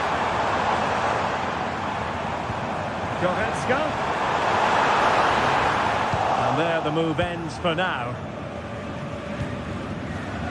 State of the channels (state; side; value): identical; both; correlation 1.00